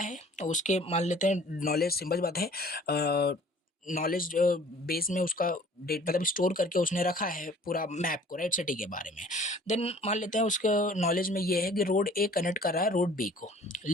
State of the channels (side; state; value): both; normal; correlation 0.51